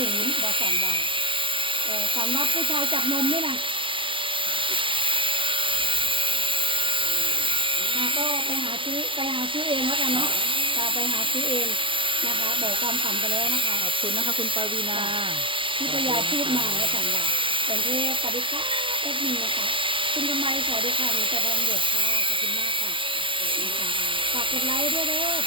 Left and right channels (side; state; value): left; late; 0.25 ms